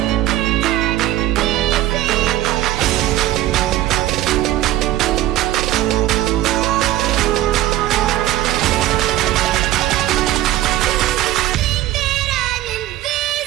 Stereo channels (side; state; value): left; quieter; 14.4 dB